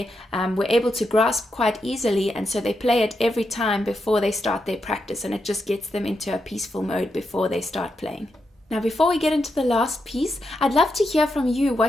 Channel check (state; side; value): normal; both; correlation 0.84